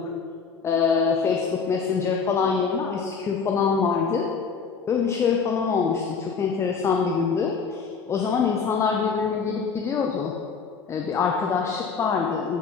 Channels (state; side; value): quieter; right; 5.5 dB